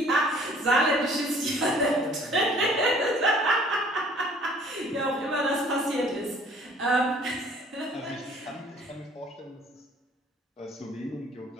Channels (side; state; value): both; normal; correlation 0.55